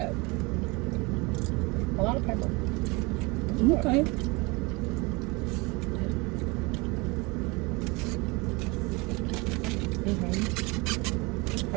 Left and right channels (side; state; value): left; quieter; 26.3 dB